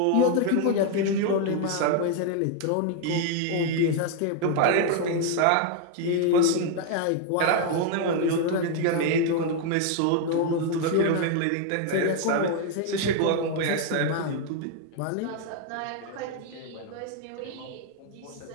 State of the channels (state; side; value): different; both; correlation 0.00